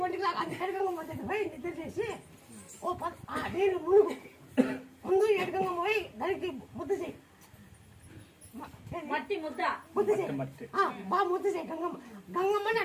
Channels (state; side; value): identical; both; correlation 1.00